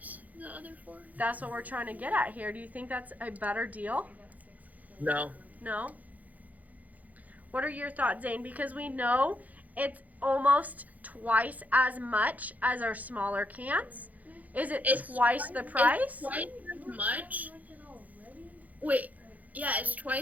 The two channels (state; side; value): late; left; 0.078 ms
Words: other 4? that's what we're trying to get at here. Do you think that's a better deal? No. No? What are your thoughts, Zane? Because we know it's almost twice as much as our smaller cans. Is it twice the price? It's twice as much. Wait, yeah, it's